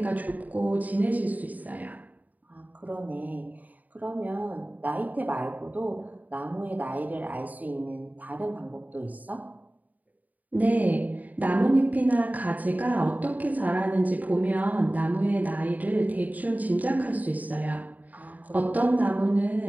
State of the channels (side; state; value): left; late; 0.077 ms